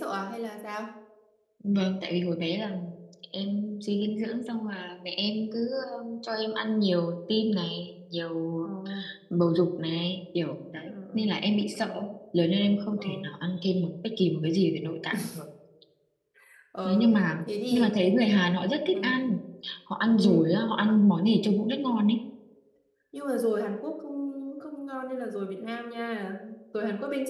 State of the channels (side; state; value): both; identical; correlation 1.00